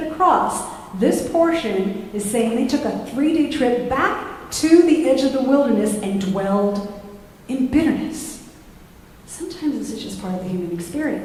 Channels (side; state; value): both; identical; correlation 1.00